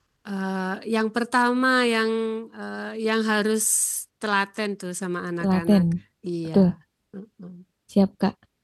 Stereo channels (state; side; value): identical; both; correlation 1.00